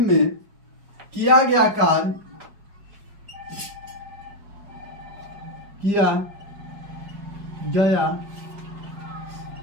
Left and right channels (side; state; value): left; late; 5.0 ms